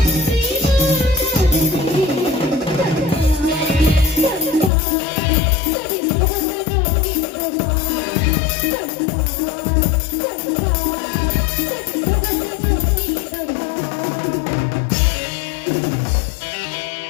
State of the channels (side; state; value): right; drops out; at 4.7 s